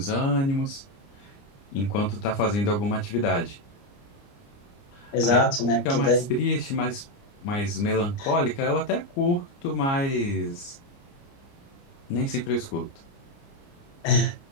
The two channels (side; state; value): right; late; 29 ms